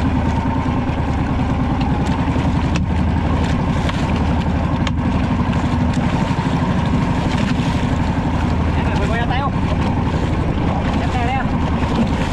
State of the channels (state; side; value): identical; both; correlation 1.00